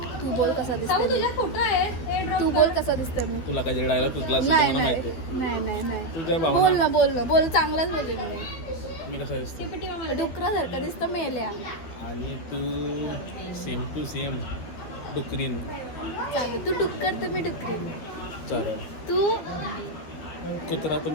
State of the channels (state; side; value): late; right; 12 ms